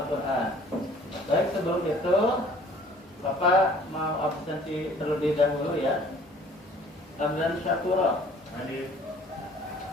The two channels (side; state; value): both; normal; correlation 0.53